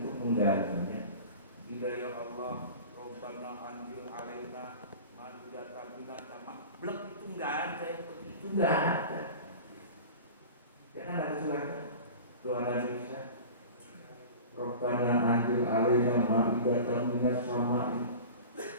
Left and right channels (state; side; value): inverted; both; correlation -0.37